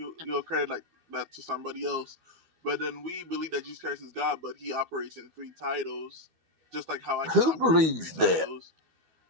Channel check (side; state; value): left; late; 12 ms